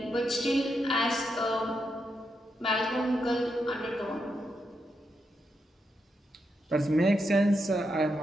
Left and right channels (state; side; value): normal; both; correlation 0.83